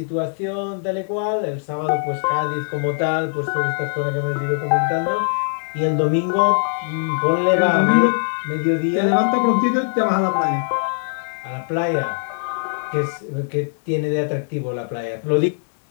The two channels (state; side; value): silent; right; digital silence